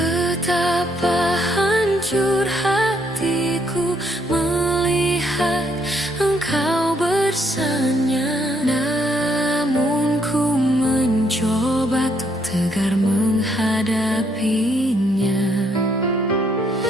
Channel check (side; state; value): both; normal; correlation 0.72